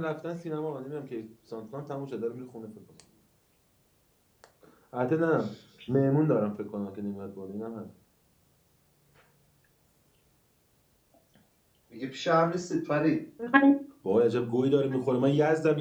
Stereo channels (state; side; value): identical; both; correlation 1.00